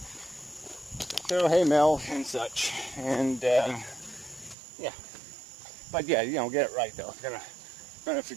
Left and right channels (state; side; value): drops out; left; at 4.5 s